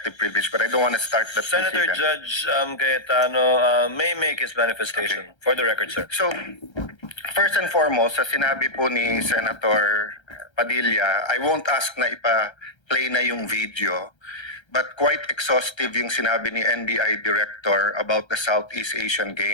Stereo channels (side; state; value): right; late; 1.3 ms